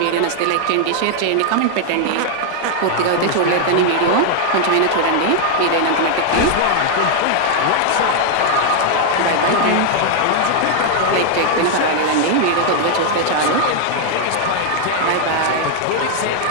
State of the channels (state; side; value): different; both; correlation 0.00